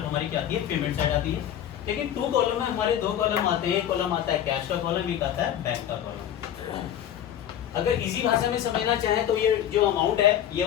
हमारी क्या आती है, पेमेंट साइड आती है। लेकिन 2 कॉलम में हमारे 2 कॉलम आते हैं। एक कॉलम आता है कैश का कॉलम, एक आता है बैंक का कॉलम। अगर इजी भाषा में समझना चाहें तो ये जो अमाउंट है, ये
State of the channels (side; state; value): right; quieter; 10.5 dB